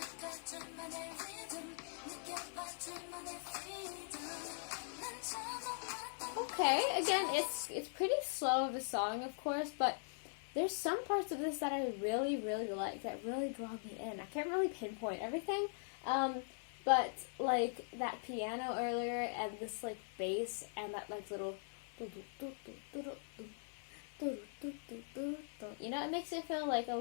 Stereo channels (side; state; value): right; silent; 50 dB below the other